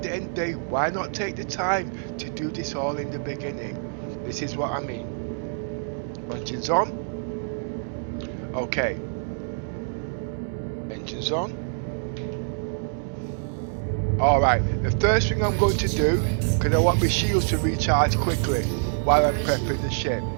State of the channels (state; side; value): silent; left; digital silence